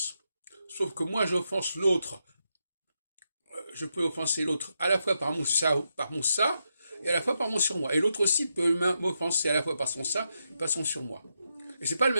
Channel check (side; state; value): both; inverted; correlation -0.83